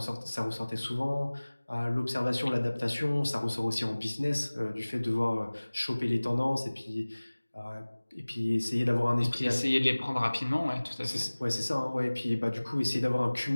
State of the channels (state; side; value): inverted; both; correlation -1.00